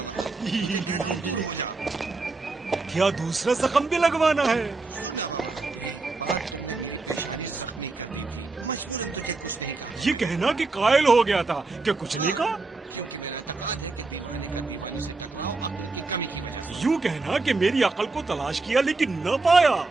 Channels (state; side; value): quieter; left; 3.6 dB